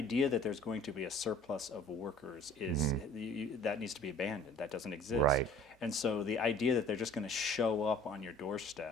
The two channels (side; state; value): both; normal; correlation 0.49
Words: that there's going to be a surplus of workers is that needs to be abandoned. That doesn't exist. Right. And so the idea that they're just going to show up on your